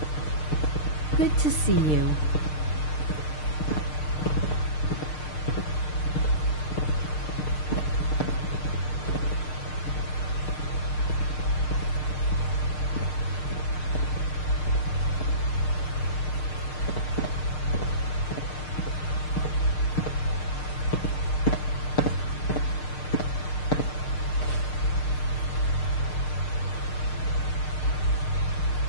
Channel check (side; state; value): right; late; 6.6 ms